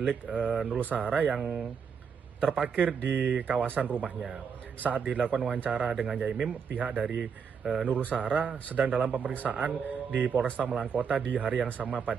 Nurul Sahara yang terparkir di kawasan rumahnya. Saat dilakukan wawancara dengan Yaimim, pihak dari Nurul Sahara sedang dalam pemeriksaan di Polresta Malang Kota di hari yang sama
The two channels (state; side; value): quieter; left; 6.5 dB